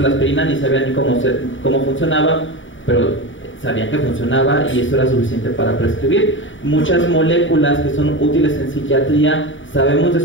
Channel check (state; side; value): late; right; 0.56 ms